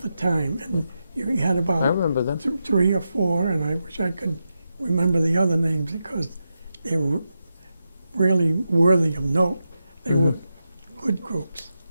the time. And you had I about remember them. 3 or 4, and I wish I could remember the other names because they were really worthy of note. They were good groups.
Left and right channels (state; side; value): inverted; both; correlation -0.87